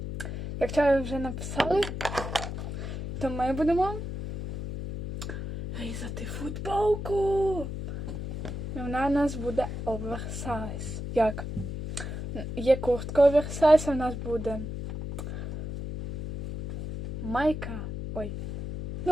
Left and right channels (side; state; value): left; noise; hum, 6 dB below the sound